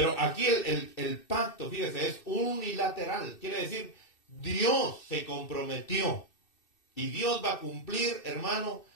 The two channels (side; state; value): right; late; 2.6 ms